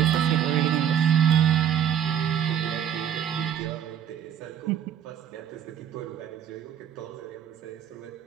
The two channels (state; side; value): quieter; left; 9.2 dB